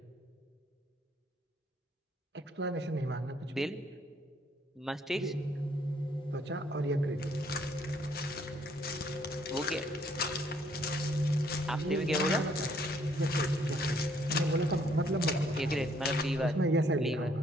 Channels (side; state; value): both; normal; correlation 0.66